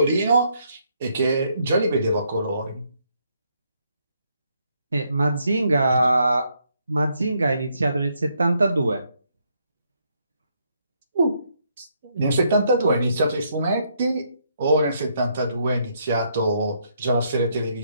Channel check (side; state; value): both; inverted; correlation -0.74